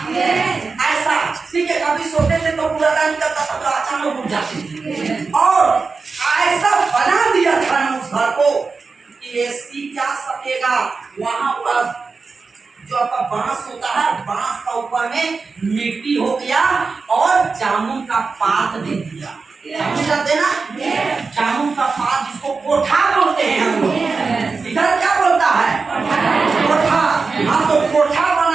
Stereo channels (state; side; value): quieter; left; 4.5 dB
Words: ऐसा ठीक है। कभी सोते थे तो बुर्दा निकलता था, तो अचानक उठ जाते थे। और ऐसा बना दिया था ना उस घर को कि एसी क्या सकेगा। वहां पर जो आपका बांस होता है, बांस का ऊपर में मिट्टी हो गया और जामुन का पात दे दिया। जानते ना, जामुन का पात जिसको कोठा बोलते हैं हम लोग, इधर क्या बोलता है, कोठा। हाँ, तो कोठा